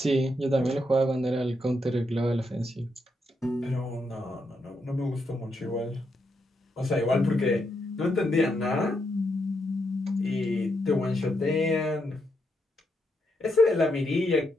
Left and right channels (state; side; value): normal; both; correlation 0.80